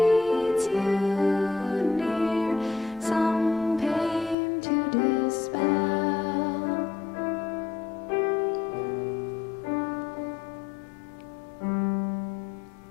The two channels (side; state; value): right; drops out; at 4.4 s